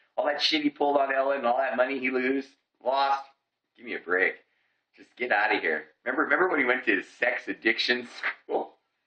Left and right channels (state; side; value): identical; both; correlation 1.00